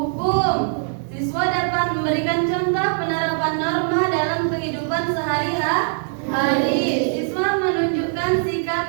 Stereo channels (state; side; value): silent; left; 56 dB below the other